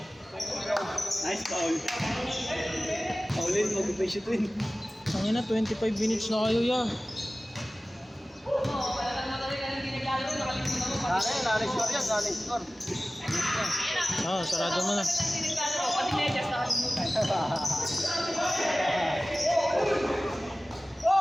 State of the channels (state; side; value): normal; both; correlation 0.97